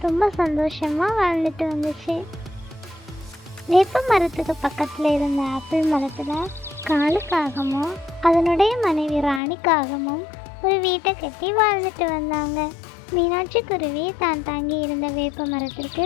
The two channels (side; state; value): right; drops out; at 9.4 s